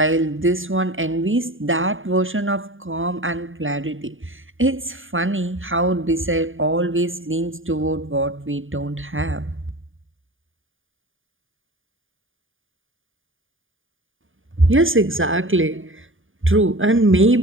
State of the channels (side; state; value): left; late; 0.58 ms